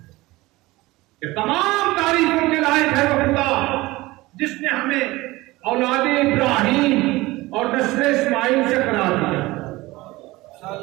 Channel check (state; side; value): quieter; left; 19.9 dB